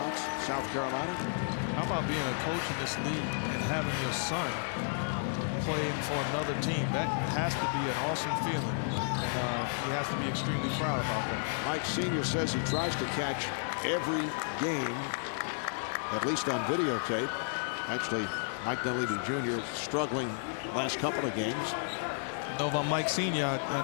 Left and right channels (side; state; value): right; silent; 56 dB below the other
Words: South Carolina. How about being a coach in this league and having your son playing for another team? That has to be an awesome feeling. It has to be extremely proud. Mike Sr. says he tries to catch every game, at least on videotape. Actually, Mike Dunleavy Jr. struggling last couple of games. No, but Mike Sr.,